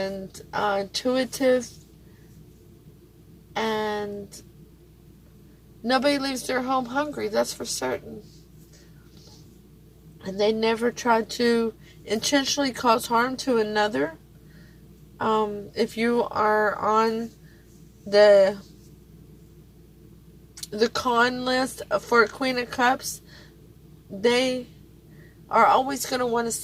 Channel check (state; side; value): identical; both; correlation 1.00